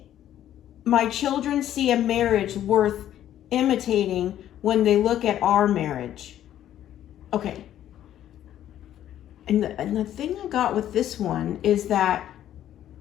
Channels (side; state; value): right; quieter; 11.6 dB